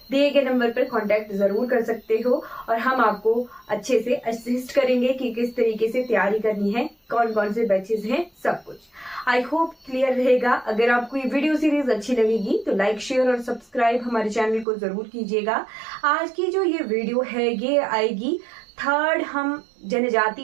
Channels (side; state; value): left; drops out; at 14.7 s